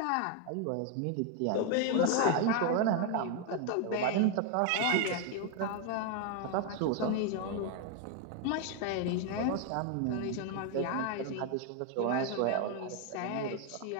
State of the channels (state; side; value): different; both; correlation 0.01